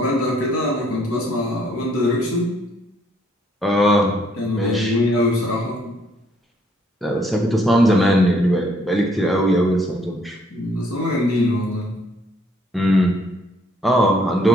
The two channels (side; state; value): both; normal; correlation 0.66